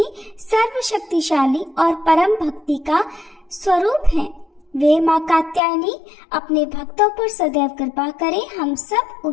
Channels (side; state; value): right; drops out; at 5.6 s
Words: सर्वशक्तिशाली और परम भक्ति का स्वरूप है। वे माँ कात्यायनी अपने भक्तों पर सदैव कृपा करें। हम सब